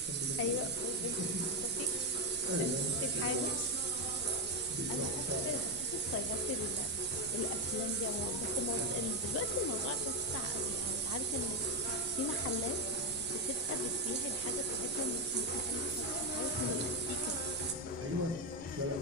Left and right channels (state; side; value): noise; left; rumble, 15 dB below the sound